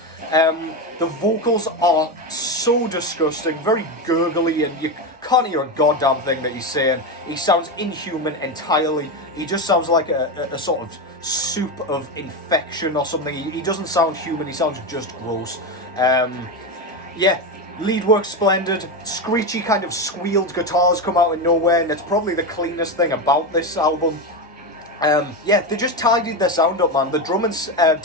The vocals are so disgusting, very gurgly, and you can't hear a goddamn thing that he's saying. He sounds inhuman entirely. He just sounds like a sort of soup of infection or something. He doesn't sound human, he sounds just gross. Yeah, lead work splendid. Screechy kind of squealed guitars come out of nowhere, and it's probably the cleanest thing about this album. Yeah, they just tidied their sound up, man. The drumming's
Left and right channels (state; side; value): normal; both; correlation 0.15